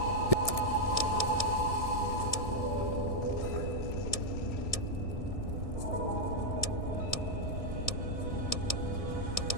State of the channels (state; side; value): late; right; 1.6 ms